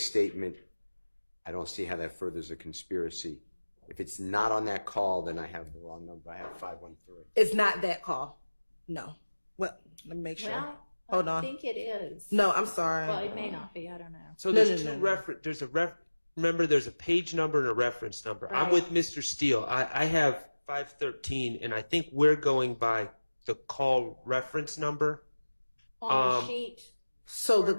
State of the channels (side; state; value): both; inverted; correlation -1.00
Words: I don't see how that furthers a conspiracy. If it's not on that call, then I have the wrong number. I have 513. It's not that call. No. Well, let me make sure. Well, hold on. I think it is. No, I'm sorry. Well, it may not be. I don't know. So there's remember, there's a page number and a reference number. Right. I'm with Mr. Steele. I have 513, and I think we're going by the call reference number. On the sheet. So the